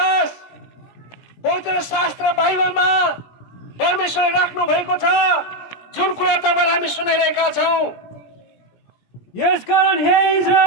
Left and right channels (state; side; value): late; right; 17 ms